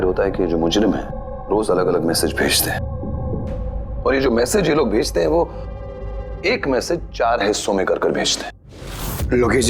होता है कि जो मुजरिम है रोज अलग अलग मैसेज भेजते हैं, और ये जो मैसेज ये लोग भेजते हैं वो एक मैसेज 4 हिस्सों में कर भेजते हैं। लोकेश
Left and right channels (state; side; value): identical; both; correlation 1.00